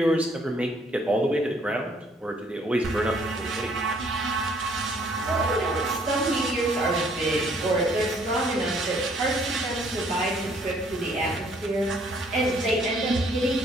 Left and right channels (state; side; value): normal; both; correlation 0.63